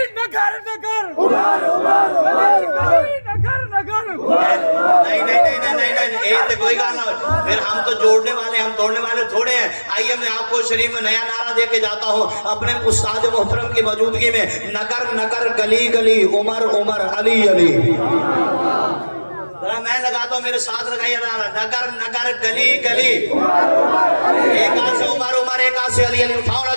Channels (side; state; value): both; inverted; correlation -1.00